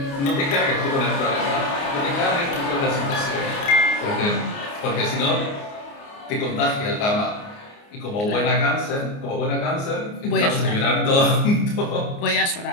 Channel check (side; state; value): right; late; 29 ms